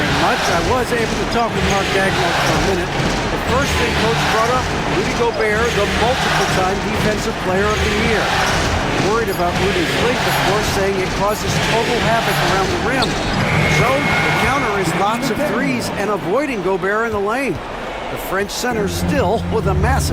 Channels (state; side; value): identical; both; correlation 1.00